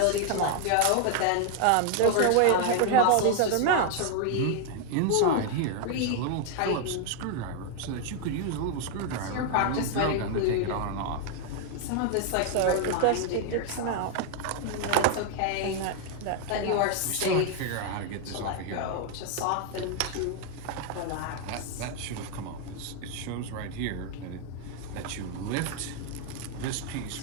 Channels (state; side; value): different; both; correlation 0.00